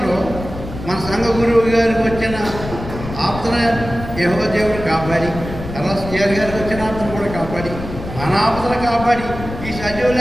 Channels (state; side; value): noise; left; rumble, 10 dB below the sound